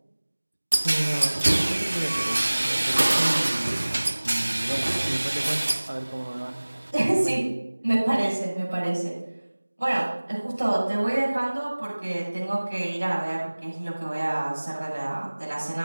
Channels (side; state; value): both; inverted; correlation -1.00